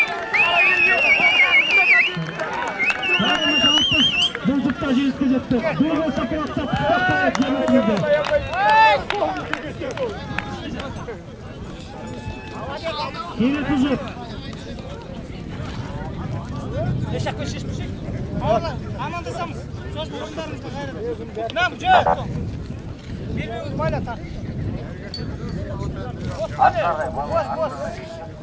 Bulcukta jeyizge жетті. Dur olsa kıraqtap. Yine tuzuk. Yaşak ve şişmişik. Amandasамыз. Söz durumlarımızda gayrı. Nam, cöp. Birbirimiz bayla tak. Hadi. Boz.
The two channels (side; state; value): both; identical; correlation 1.00